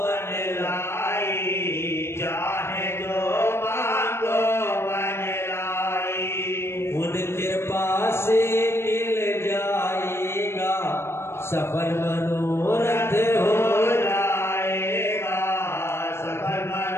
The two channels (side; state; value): right; late; 0.12 ms